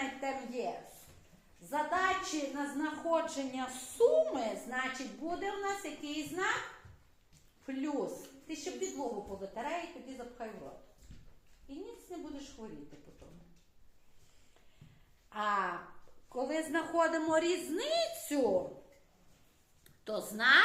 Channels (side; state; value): both; identical; correlation 1.00